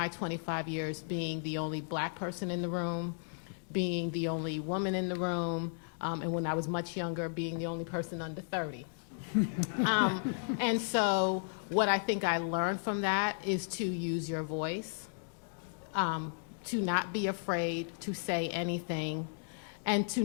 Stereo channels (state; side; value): silent; right; digital silence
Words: 25 years being the only black person in the room, being the only woman in the room, and when I was much younger, being the only person under 30. And so what I think I learned from that is to use your voice, to not be afraid to say anything, and to